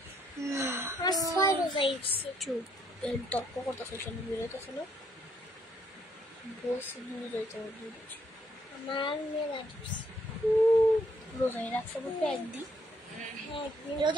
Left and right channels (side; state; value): both; normal; correlation 0.70